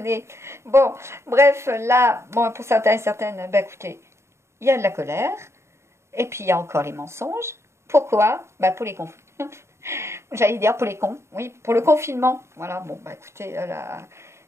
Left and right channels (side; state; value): left; late; 0.13 ms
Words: Bon, bref, là, pour certains et certaines, écoutez, il y a de la colère, et puis il y a encore les mensonges. Pourquoi? Pour les cons. J'allais dire pour les cons, oui, pour le confinement. Voilà, écoutez, là,